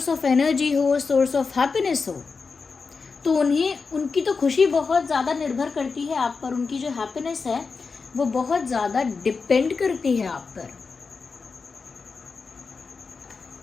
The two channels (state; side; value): quieter; right; 4.8 dB